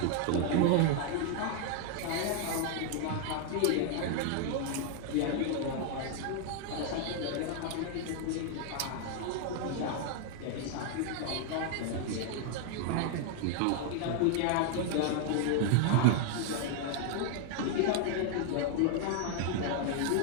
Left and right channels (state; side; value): different; both; correlation 0.00